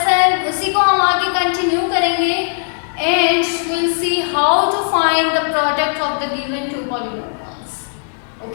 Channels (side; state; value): right; silent; 68 dB below the other